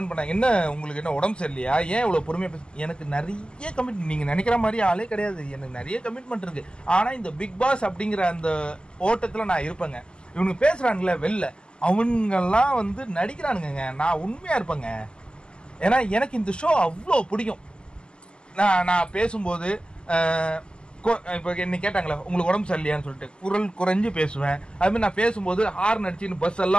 பண்ணாங்க, என்ன உங்களுக்கு என்ன உடம்பு சரியில்லையா, ஏன் இவ்வளோ பொறுமையாக பேச? எனக்கு நிறைய கமிட்மெண்ட், நீங்கள் நினைக்கிற மாதிரி ஆளே கிடையாது. எனக்கு நிறைய கமிட்மெண்ட் இருக்கு. ஆனால் இந்த பிக் பாஸ் அப்படிங்கிற அந்த ஓட்டத்தில் நான் இருப்பேங்க. இவனுங்க பேசுகிறானுங்களே வெளில, அவங்கெல்லாம் நடிக்கிறானுங்க. நான் உண்மையாக இருப்பேங்க. ஏன்னா எனக்கு இந்த ஷோ அவ்வளோ பிடிக்கும். நான் பேசும்போது இப்போ என்ன கேட்டாங்களே உங்களுக்கு உடம்பு சரியில்லையான்னு சொல்லிட்டு குரல் குறைஞ்சு பேசுவேன். அதுமாதிரி நான் பேசும்போது ஹார்ன் அடிச்சுன்னு பஸ்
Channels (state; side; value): late; right; 0.049 ms